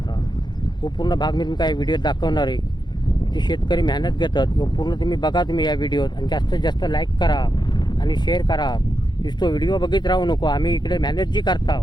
तो पूर्ण भाग मी तुमका या व्हिडिओत दाखवणार आहे. ते शेतकरी मेहनत घेतात तो पूर्ण तुम्ही बघा तुम्ही या व्हिडिओत आणि जास्तीत जास्त लाईक करा आणि शेअर करा. नुसतो व्हिडिओ बघित राहू नको. आम्ही इकडे मेहनत जी करता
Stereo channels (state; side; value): late; right; 0.21 ms